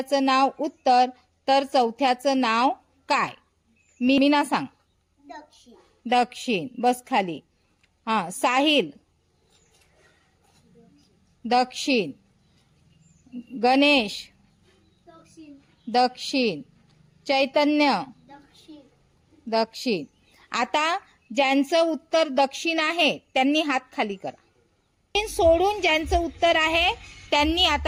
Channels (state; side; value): identical; both; correlation 1.00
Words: नाव उत्तर, तर चौथ्याचं नाव काय? मीना सांग। दक्षिण। दक्षिण। बस खाली। साहिल दक्षिण, गणेश दक्षिण। दक्षिण, चैतन्य दक्षिण। दक्षिण। आता ज्यांचं उत्तर दक्षिण आहे त्यांनी हात खाली करा। सोडून ज्यांचं उत्तर आहे त्यांनी